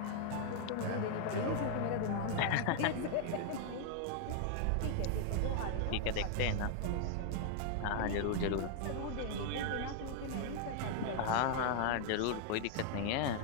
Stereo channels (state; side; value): different; both; correlation 0.00